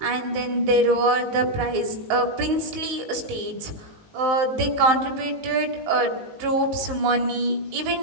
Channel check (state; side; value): late; left; 19 ms